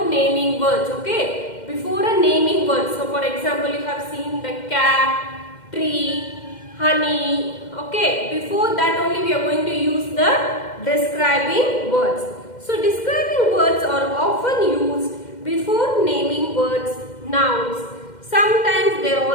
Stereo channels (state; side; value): late; right; 2.1 ms